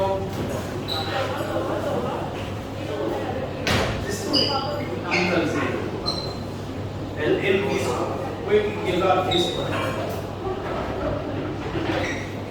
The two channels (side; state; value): both; identical; correlation 1.00